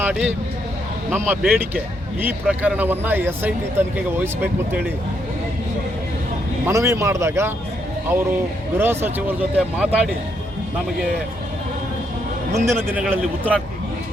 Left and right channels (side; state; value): both; normal; correlation 0.76